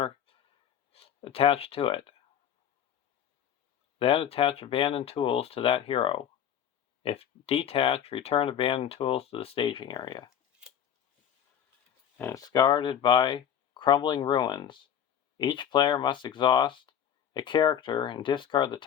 attached to it. Then attach abandoned tools to that hero. If detached, return abandoned tools to the staging area. And it's guarded by Crumbling Ruins. Each player must exhaust a character and discard the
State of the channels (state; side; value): quieter; right; 9.4 dB